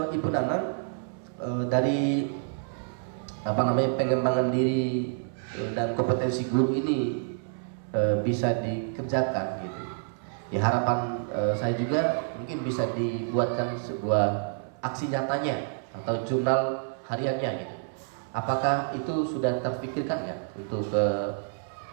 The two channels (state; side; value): silent; left; 59 dB below the other